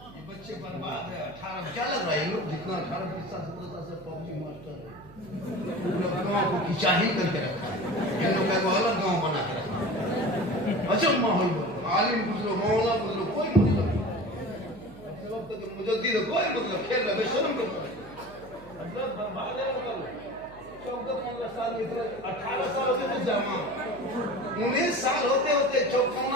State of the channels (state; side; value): noise; right; hum, 21 dB below the sound